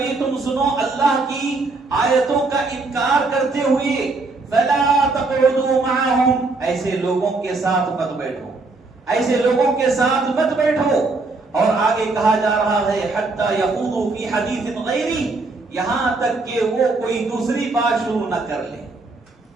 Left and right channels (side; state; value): left; quieter; 3.6 dB